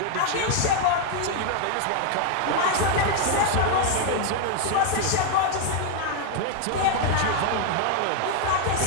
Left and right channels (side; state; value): both; different; correlation 0.00